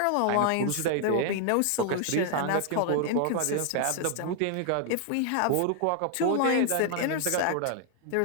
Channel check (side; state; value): both; different; correlation 0.00